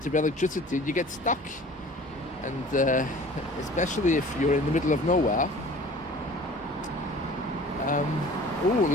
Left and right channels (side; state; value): both; normal; correlation 0.46